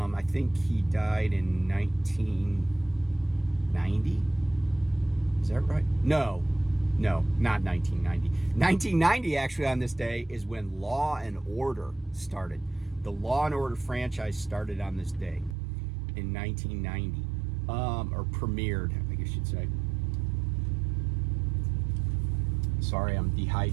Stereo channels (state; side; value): drops out; left; at 15.6 s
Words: think he died in 1990. Is that right? No, not 1990. 1990, actually, on this day is when Law and Order started. The Law and Order franchise started on this day in 1990, or premiered, I guess you'd say. Sorry, I'm